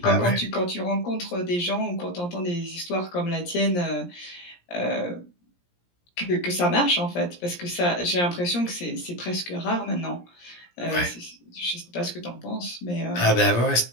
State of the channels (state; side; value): late; right; 17 ms